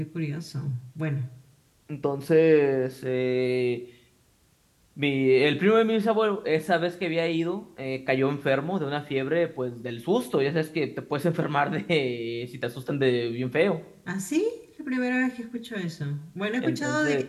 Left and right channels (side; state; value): both; identical; correlation 1.00